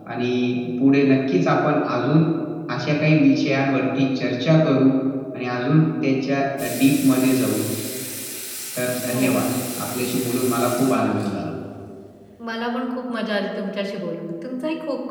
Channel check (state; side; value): identical; both; correlation 1.00